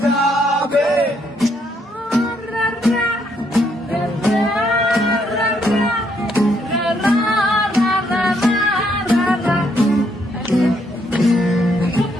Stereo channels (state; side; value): normal; both; correlation 0.73